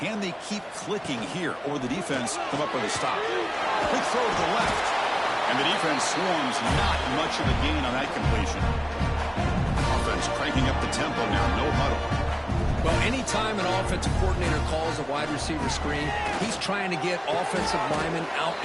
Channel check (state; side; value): identical; both; correlation 1.00